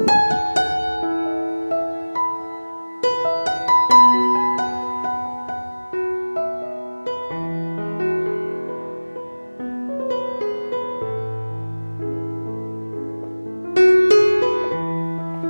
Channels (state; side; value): inverted; both; correlation -1.00